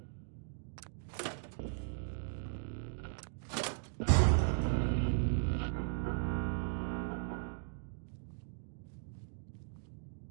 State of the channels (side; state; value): left; silent; digital silence